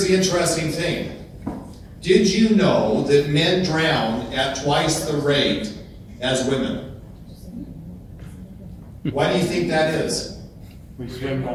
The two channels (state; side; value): identical; both; correlation 1.00